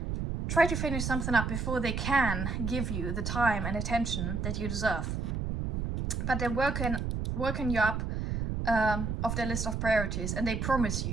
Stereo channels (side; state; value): right; noise; rumble, 2 dB below the sound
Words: finish something up before they can give you the time and attention that you deserve. But they're working you up of their list of priorities, and they promise